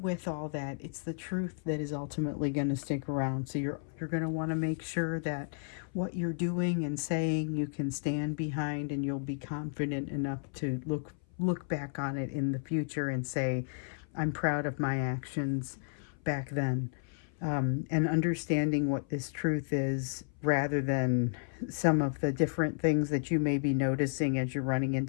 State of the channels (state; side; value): silent; right; 56 dB below the other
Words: with all that, it's the truth that is ultimately going to stick around. So you're going to want to make sure that what you're doing and saying you can stand behind, and you'll be confident enough to look back on it in the future and say, I'm proud of my actions back then. And understanding what this truth is, rather than some of the different things that you may be noticing as you're running